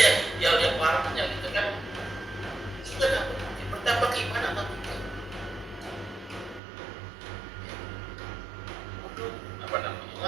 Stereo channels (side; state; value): left; drops out; at 6.6 s